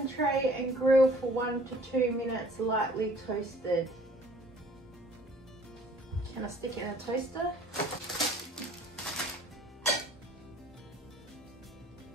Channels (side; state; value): both; normal; correlation 0.53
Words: tray and grill for 1 to 2 minutes, lightly toasted. Can I stick it in a toaster?